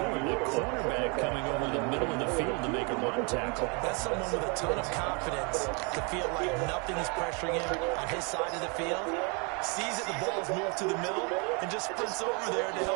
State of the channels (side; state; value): left; quieter; 33.1 dB